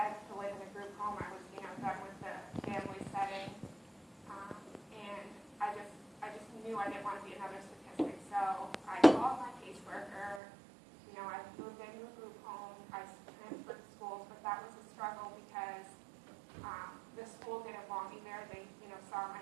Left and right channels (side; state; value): left; drops out; at 10.4 s